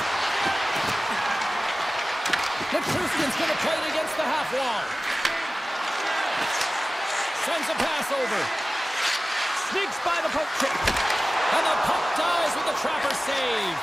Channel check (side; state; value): both; normal; correlation 0.97